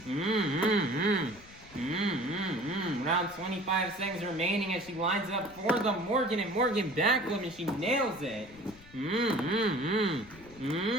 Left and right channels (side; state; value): left; noise; rumble, 22 dB below the sound